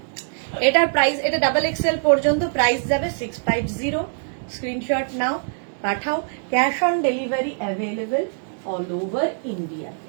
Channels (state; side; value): silent; left; 62 dB below the other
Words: এটার প্রাইস, এটা ডাবল এক্সেল পর্যন্ত প্রাইস যাবে 650। স্ক্রিনশট নাও, পাঠাও। Cash on delivery available all over India.